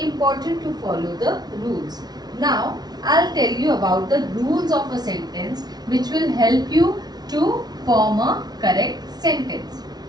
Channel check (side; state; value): left; late; 0.19 ms